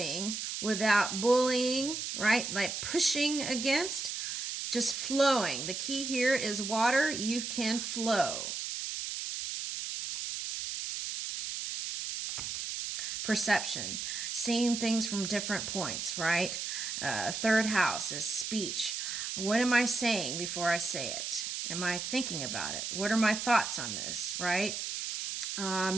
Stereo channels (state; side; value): noise; right; hiss, 4 dB below the sound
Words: without bullying, right? Like pushing against, just flowing. The key here is water. You can flow. Perception, seeing things from different points, right? Third house is speech. What am I saying before I say it? Am I thinking about it? What are my thoughts on this, right?